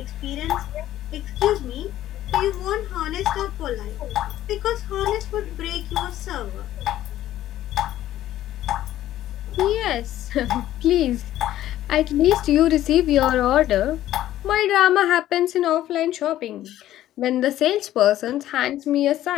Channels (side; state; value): right; quieter; 13.3 dB